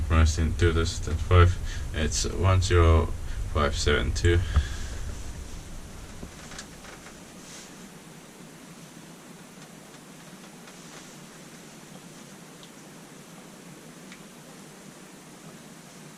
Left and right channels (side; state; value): both; identical; correlation 1.00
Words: pronounced in 2005, it's 10572.